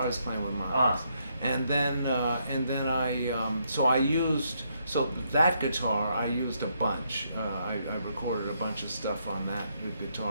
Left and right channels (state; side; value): inverted; both; correlation -0.76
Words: was playing with Miles, and then I used that guitar I used a bunch. I recorded a bunch of stuff on that